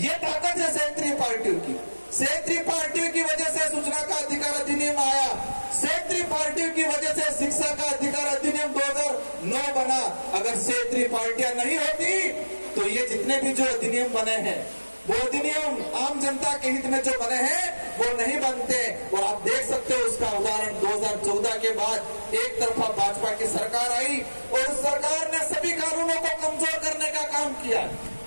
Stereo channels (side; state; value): both; inverted; correlation -1.00